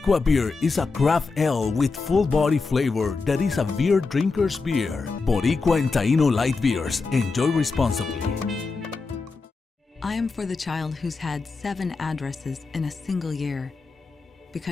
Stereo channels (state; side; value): quieter; right; 4.2 dB